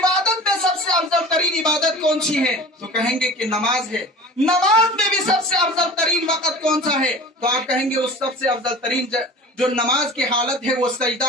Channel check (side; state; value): both; normal; correlation 0.39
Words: میں سب سے افضل ترین عبادت کون سی ہے تو کہیں گے کہ نماز ہے، نماز میں بھی سب سے افضل ترین وقت کون سا ہے تو آپ کہیں گے اس سب سے افضل ترین جو نماز کی حالت ہے وہ